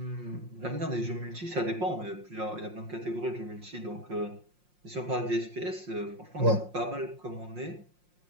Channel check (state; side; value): late; left; 5.6 ms